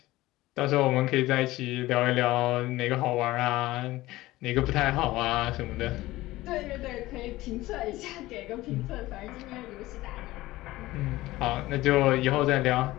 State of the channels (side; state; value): right; quieter; 17.8 dB